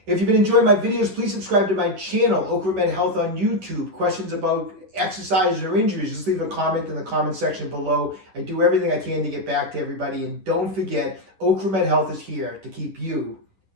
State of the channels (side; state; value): left; late; 10 ms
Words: If you've been enjoying my videos, please subscribe to my channel, Ocramed Health on YouTube. Questions about exercises or injuries, just leave a comment in the comment section below. I do everything I can to get back to everybody. And don't forget, Ocramed Health is here to keep you